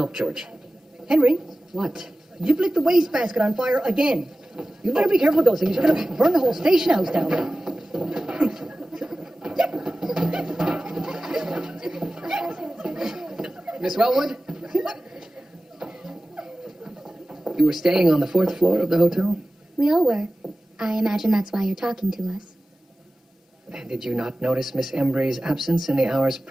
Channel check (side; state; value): both; normal; correlation 0.96